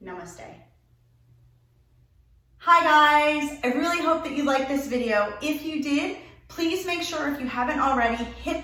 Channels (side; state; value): both; identical; correlation 1.00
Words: Namaste. Hi guys, I really hope that you liked this video. If you did, please make sure, if you haven't already, hit